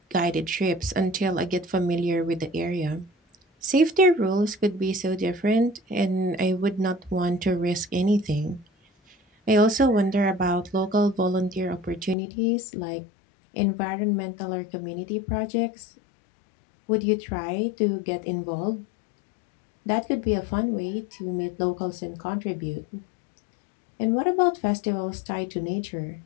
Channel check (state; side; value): drops out; right; at 12.2 s